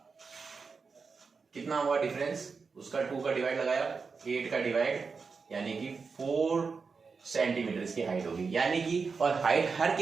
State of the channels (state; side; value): quieter; left; 5.0 dB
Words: कितना हुआ डिफरेंस, उसका 2 का डिवाइड लगाया, 8 का डिवाइड, यानी कि 4 सेंटीमीटर इसकी हाइट होगी, यानी कि, और हाइट हर